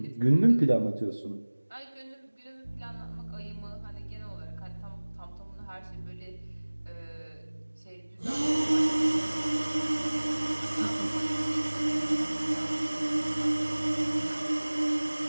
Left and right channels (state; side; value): inverted; both; correlation -1.00